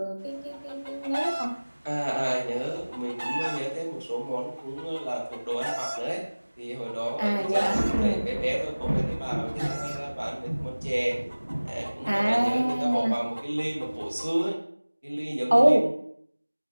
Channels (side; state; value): both; inverted; correlation -1.00